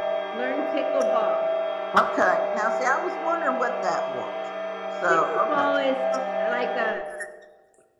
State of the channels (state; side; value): identical; both; correlation 1.00